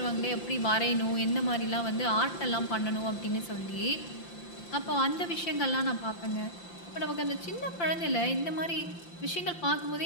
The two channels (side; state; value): right; late; 5.8 ms